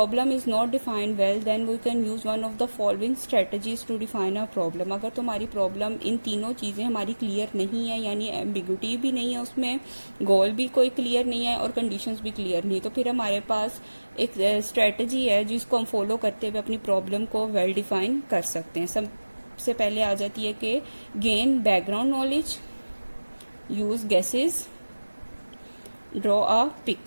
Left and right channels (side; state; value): both; inverted; correlation -1.00